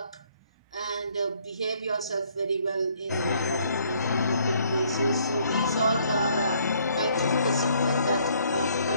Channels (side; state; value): both; inverted; correlation -0.65